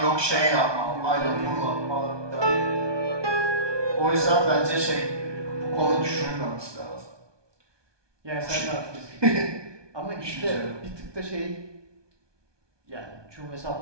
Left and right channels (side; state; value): left; late; 1.2 ms